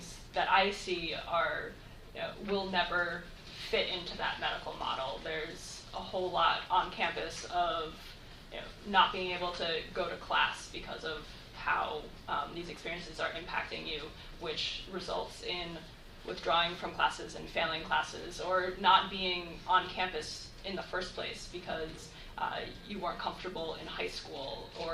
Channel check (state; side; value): identical; both; correlation 1.00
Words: that I see are will never fit into that medical model. There's a whole lot on campus of not being able to go to class because of how these experiences are impacting you, which results in withdrawing from classes and failing classes, or not being on campus in the first place because you weren't comfortable in high school